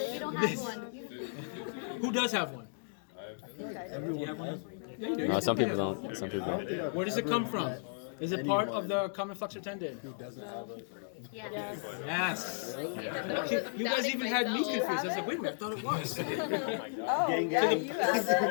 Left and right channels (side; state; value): right; silent; digital silence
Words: if you don't have one? Who does have one? Do you have one? Yeah, you do. No, some people don't. Some people don't. Where does it come from? Is it part of the common flexor tendon? Yes. Yes. You guys even had me confused. I was like, wait a minute, I thought it was. Oh, yeah, you have